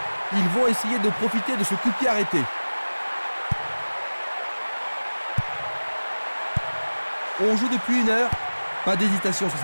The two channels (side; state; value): both; inverted; correlation -1.00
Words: Ils vont essayer de profiter de ce coup de pied arrêté. On joue depuis 1 heure. Pas d'hésitation sur